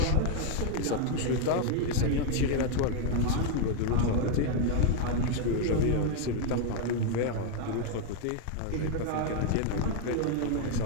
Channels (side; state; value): both; different; correlation 0.01